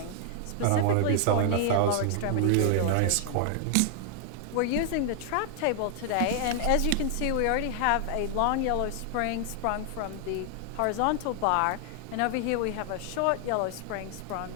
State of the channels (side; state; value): both; different; correlation 0.00